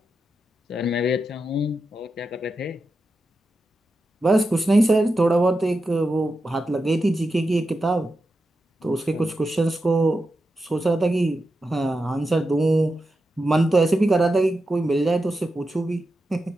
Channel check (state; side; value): normal; both; correlation 0.89